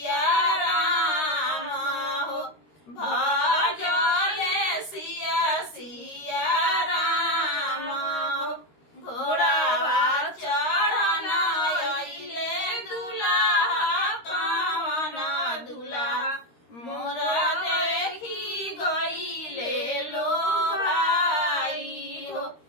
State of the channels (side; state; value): right; late; 13 ms